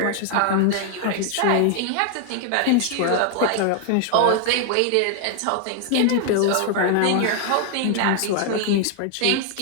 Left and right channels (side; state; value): both; different; correlation 0.00